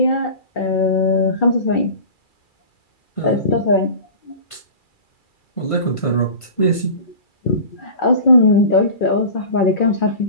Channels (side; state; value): right; late; 2.3 ms